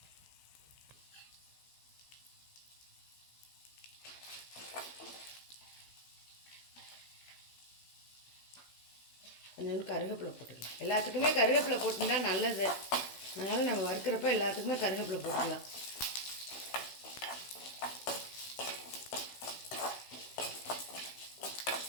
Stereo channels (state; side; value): late; right; 16 ms